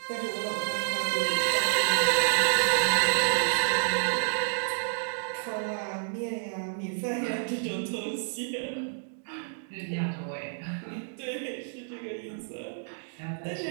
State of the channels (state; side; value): silent; left; digital silence